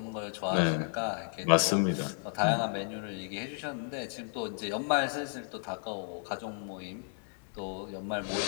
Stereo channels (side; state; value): right; silent; digital silence